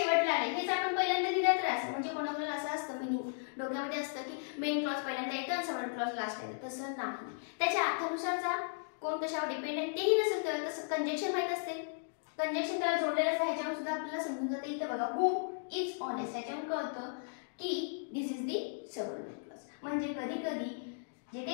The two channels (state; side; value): silent; right; digital silence